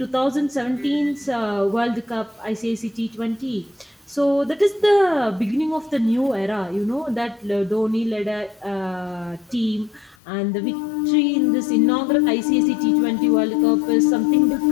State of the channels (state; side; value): drops out; right; at 10.2 s